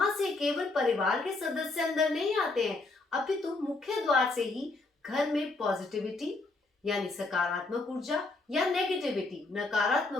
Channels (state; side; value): quieter; right; 3.4 dB